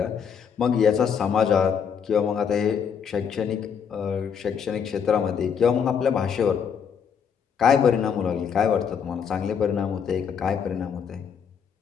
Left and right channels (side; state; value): right; quieter; 7.2 dB